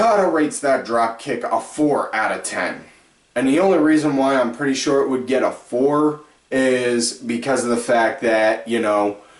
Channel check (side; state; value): both; identical; correlation 1.00